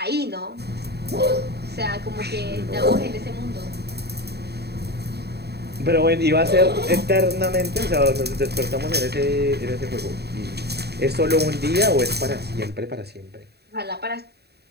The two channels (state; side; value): late; left; 0.48 ms